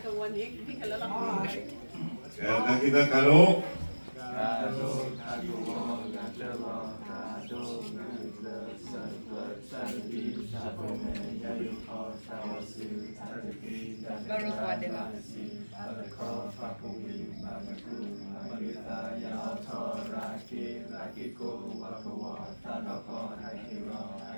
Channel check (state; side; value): inverted; both; correlation -1.00